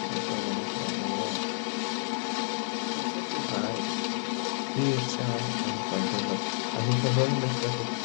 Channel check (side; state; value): right; silent; 58 dB below the other